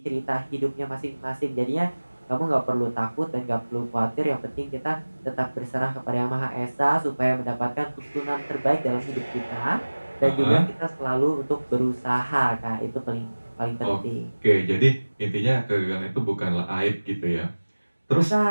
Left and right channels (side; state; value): both; inverted; correlation -1.00